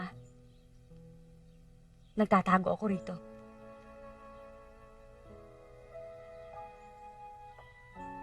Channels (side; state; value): both; identical; correlation 1.00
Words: Nagtatago ako rito.